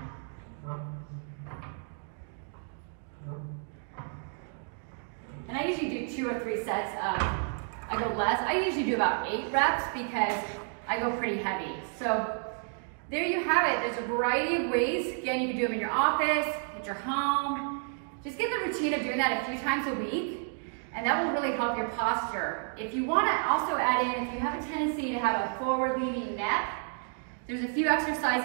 And I usually do 2 or 3 sets of, I go less. I usually do about 8 reps because I go pretty heavy. So there you have it. There's a variety of ways. Again, you can do them in your office, at your home. Just get the routine of doing that a few times a week, and that will really help your posture. If you want to also add in, if you have a tendency to have a forward-leaning neck, there's a few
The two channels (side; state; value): left; silent; 57 dB below the other